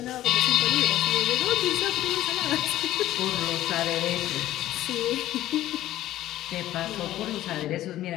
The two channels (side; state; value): right; quieter; 14.1 dB